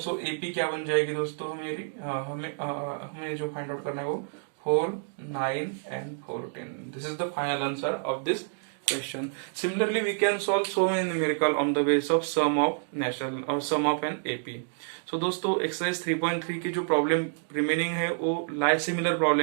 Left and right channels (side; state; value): left; silent; digital silence